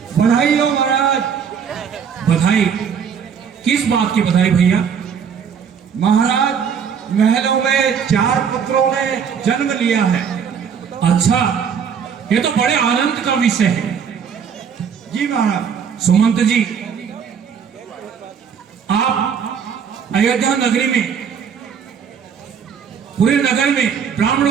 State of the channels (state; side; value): quieter; left; 7.1 dB